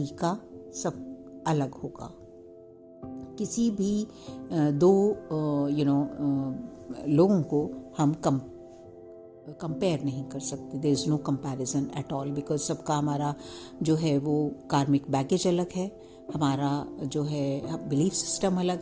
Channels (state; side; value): identical; both; correlation 1.00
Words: सब अलग होगा। किसी भी दो लोगों को हम कंपेयर नहीं कर सकते। There is no comparison at all, because सबका हमारा जो है वो कार्मिक बैगेज अलग है, हमारा जो है बिलीफ सिस्टम अलग